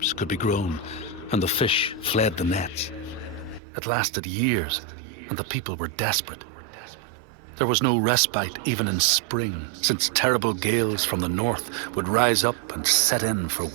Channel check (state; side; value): drops out; left; at 3.6 s